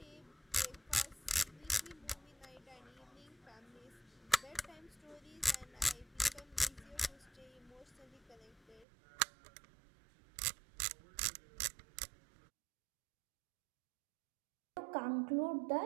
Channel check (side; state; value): left; drops out; at 8.8 s